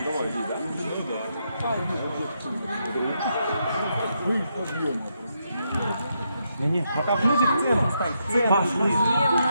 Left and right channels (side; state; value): both; inverted; correlation -0.80